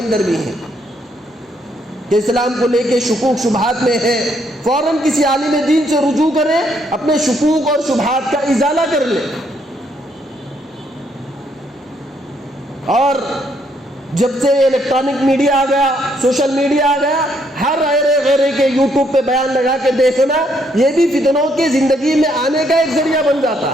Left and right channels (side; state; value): both; normal; correlation 0.72